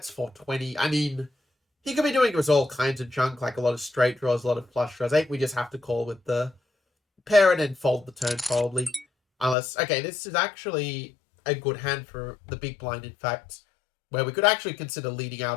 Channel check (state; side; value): drops out; right; at 9.6 s